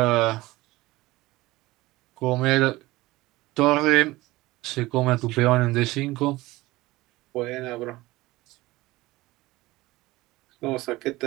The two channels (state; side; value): quieter; left; 19.3 dB